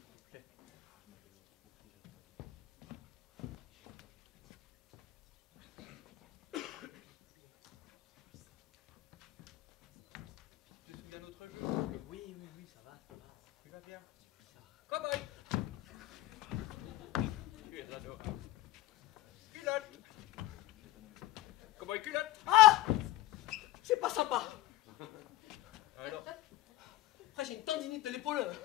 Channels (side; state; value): right; quieter; 16.8 dB